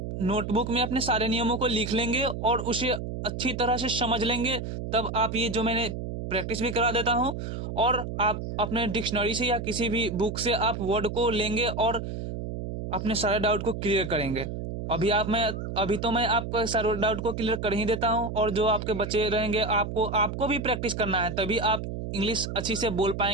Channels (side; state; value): right; noise; hum, 6 dB below the sound